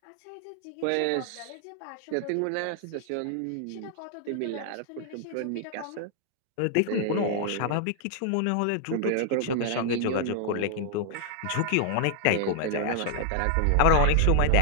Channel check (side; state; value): both; different; correlation 0.00